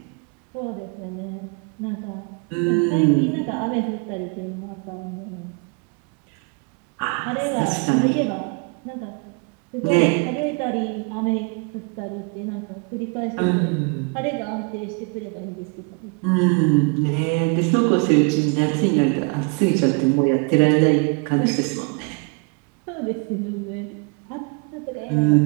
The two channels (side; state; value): left; quieter; 34.4 dB